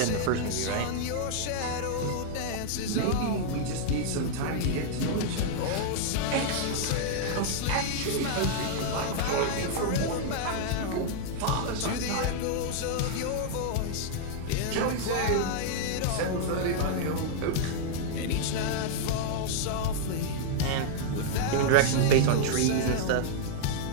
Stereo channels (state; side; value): different; both; correlation -0.01